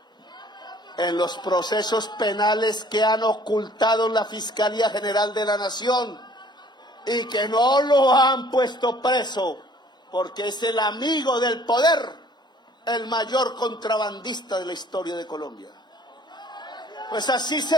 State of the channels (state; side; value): normal; both; correlation 0.56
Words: en los procesos penales que han ocultado la Fiscalía General de la Nación y que no lo han puesto preso porque es el amigo del poder, el mayor contrabandista de la historia de Colombia. Pues así